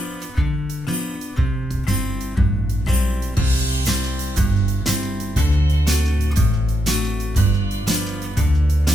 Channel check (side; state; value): both; normal; correlation 0.82